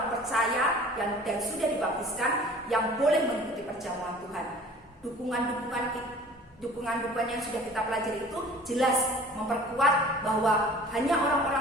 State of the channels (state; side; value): normal; both; correlation 0.46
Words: percaya dan sudah dibaptiskan yang boleh mengikuti perjamuan Tuhan. Dukungan yang sudah kita pelajari itu jelas memperkuat bahwa hanya